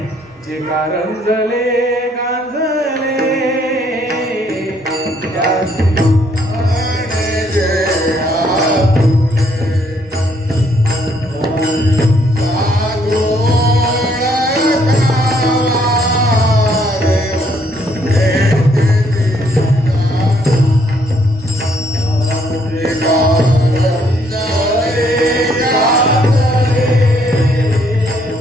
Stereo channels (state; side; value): normal; both; correlation 0.68